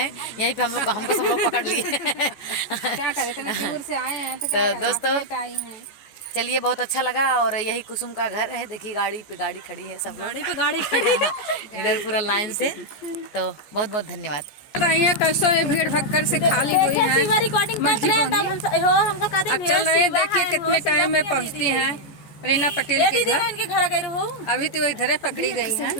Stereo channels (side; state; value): right; late; 14 ms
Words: यहीं पे हमको सब लोग पकड़ लिए। क्या करें, दूर से आए हैं तो दोस्तों चलिए, बहुत अच्छा लगा। और यही कुसुम का घर है, देखिए गाड़ी पे गाड़ी खड़ी है, सब लोग गाड़ी खड़ी इधर पूरा लाइन से। तो बहुत बहुत धन्यवाद। कैसे भीड़ भक्कर से खाली हुई है। अब चल रहे हैं, देखिए कितने टाइम में पहुँचती हैं रीना पटेल के घर गई हो। अभी तो इधर पकड़ी गई है,